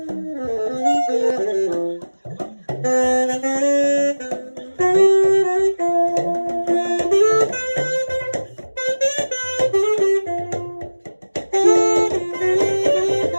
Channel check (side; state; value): both; inverted; correlation -1.00